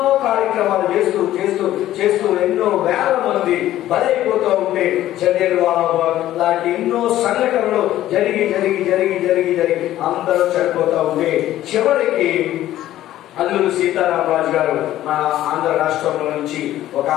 కార్యక్రమాలు చేస్తూ ఎన్నో వేల మంది బలైపోతూ ఉంటే జలియన్వాలా లాంటి ఎన్నో సంఘటనలు జరిగి అందరూ చనిపోతూ ఉంటే చివరికి అల్లూరి సీతారామరాజు గారు మన ఆంధ్ర రాష్ట్రంలో నుంచి ఒక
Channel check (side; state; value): right; quieter; 13.6 dB